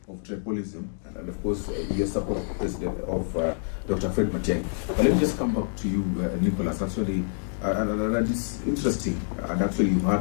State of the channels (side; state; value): right; silent; digital silence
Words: of tribalism and of course your support president of Dr. Fred Matiang'i. But let me just come back to you, Nicholas. Actually, and it's interesting. And actually, you've